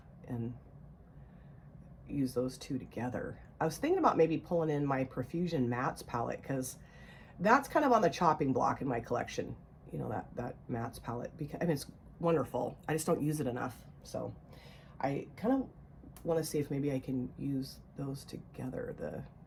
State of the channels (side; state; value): both; identical; correlation 1.00